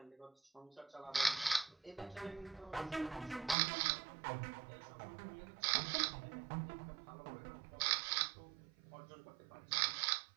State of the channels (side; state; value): left; drops out; at 3.6 s